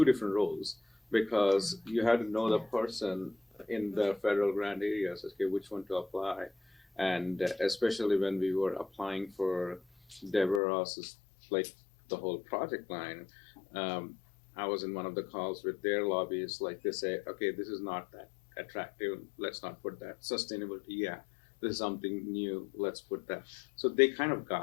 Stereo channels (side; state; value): right; drops out; at 10.6 s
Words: different roles because you have to know the person in the federal grant areas. Okay, which one to apply, and especially when we were applying for Deborah Ross's like the whole project line. I was in one of the calls with their lobbyists, like they say, okay, this is not that attractive, let's not put that. Sustainability, yeah, this is something new, let's put that. So they kind of